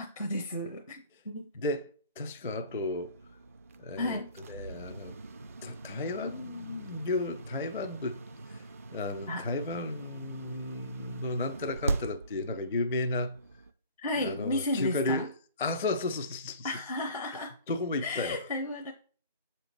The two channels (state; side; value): inverted; both; correlation -0.46